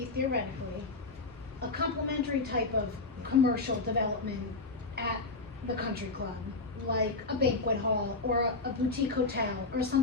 theoretically a complementary type of commercial development at the country club, like a banquet hall or a boutique hotel or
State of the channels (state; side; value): quieter; right; 3.5 dB